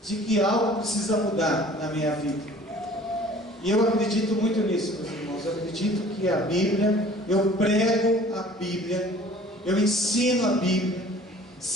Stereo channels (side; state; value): both; normal; correlation 0.49